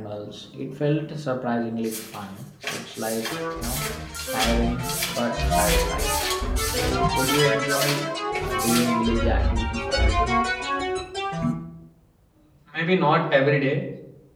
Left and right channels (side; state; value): both; identical; correlation 1.00